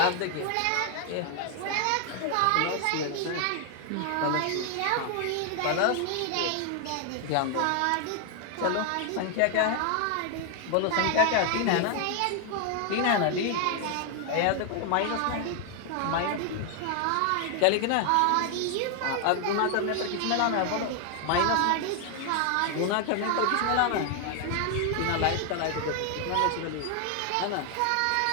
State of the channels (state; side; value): different; both; correlation 0.00